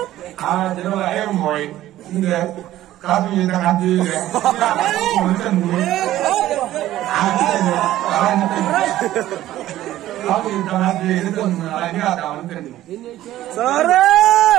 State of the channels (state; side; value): quieter; left; 14.2 dB